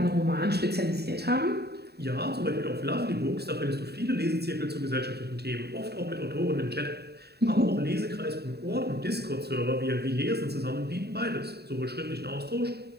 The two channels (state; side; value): late; left; 0.47 ms